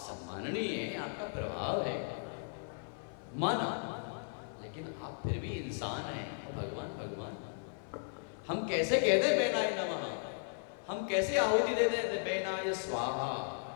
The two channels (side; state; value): right; silent; 54 dB below the other